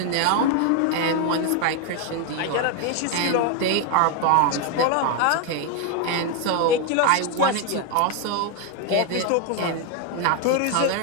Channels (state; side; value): different; both; correlation 0.01